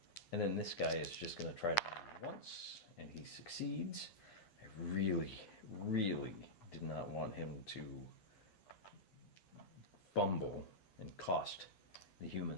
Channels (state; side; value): late; right; 10 ms